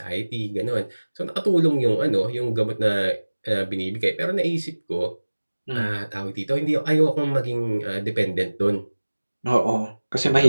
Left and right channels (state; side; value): inverted; both; correlation -1.00